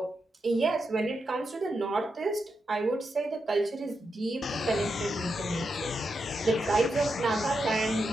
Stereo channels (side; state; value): both; normal; correlation 0.85